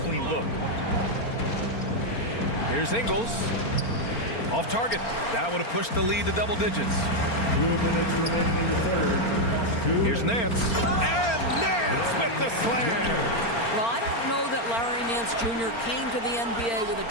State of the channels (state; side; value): late; right; 4.4 ms